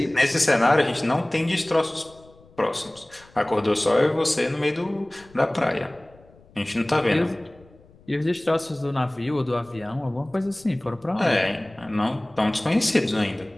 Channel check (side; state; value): left; noise; rumble, 27 dB below the sound